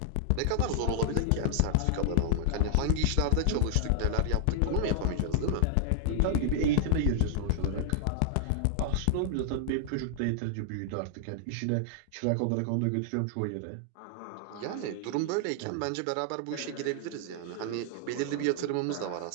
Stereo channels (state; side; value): different; both; correlation 0.00